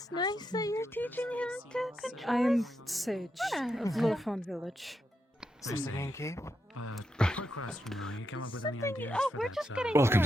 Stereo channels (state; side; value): normal; both; correlation 0.83